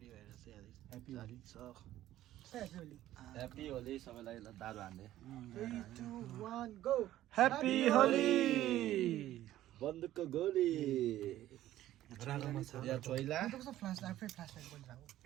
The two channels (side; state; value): left; quieter; 13.8 dB